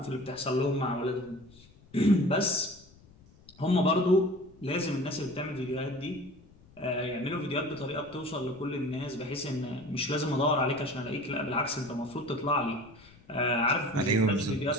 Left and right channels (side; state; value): left; noise; rumble, 25 dB below the sound